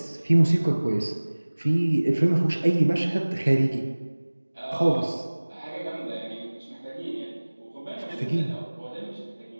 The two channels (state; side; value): inverted; both; correlation -1.00